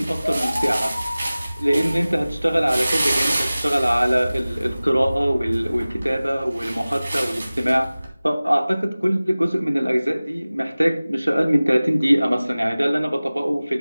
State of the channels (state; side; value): inverted; both; correlation -0.98